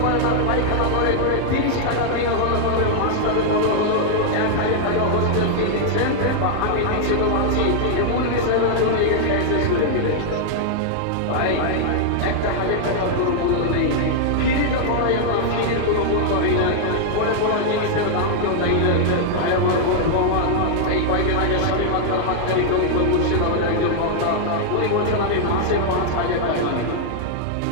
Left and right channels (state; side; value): different; both; correlation 0.00